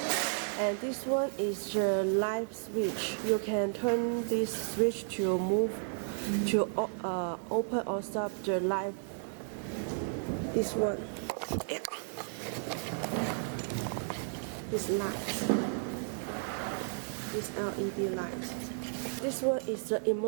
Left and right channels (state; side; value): silent; left; digital silence